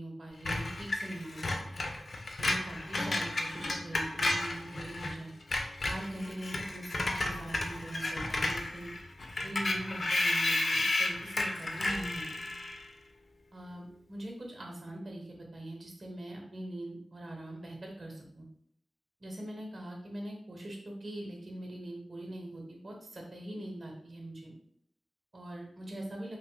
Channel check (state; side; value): normal; both; correlation 0.94